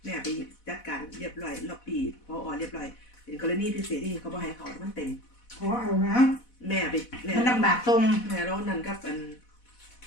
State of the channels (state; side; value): late; right; 4.1 ms